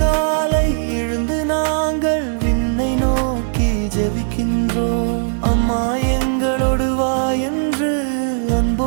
எழுந்து நாங்கள் விண்ணை நோக்கி ஜெபிக்கின்றோம். அம்மா எங்களோடு வா என்று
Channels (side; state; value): left; silent; 67 dB below the other